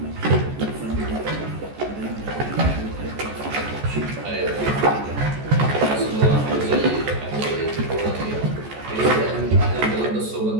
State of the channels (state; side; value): late; left; 14 ms